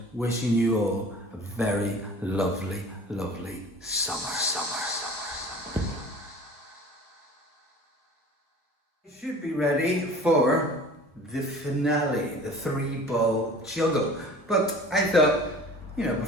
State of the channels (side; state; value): both; normal; correlation 0.43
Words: wishing you all a very lovely, lovely summer. You should be ready for the finale, the 3-ball juggle. But I thought,